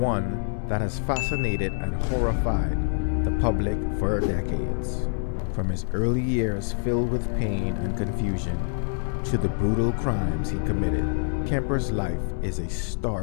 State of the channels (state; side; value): silent; right; digital silence